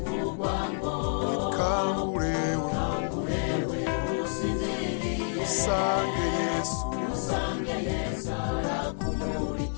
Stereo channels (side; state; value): right; silent; digital silence